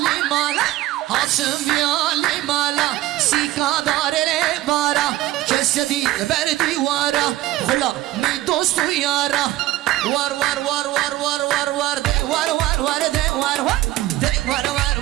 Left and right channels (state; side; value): quieter; left; 16.0 dB